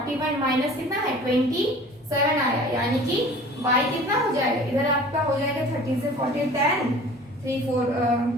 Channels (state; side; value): normal; both; correlation 0.45